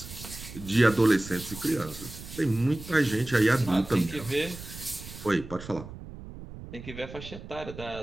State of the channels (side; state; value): right; noise; rumble, 13 dB below the sound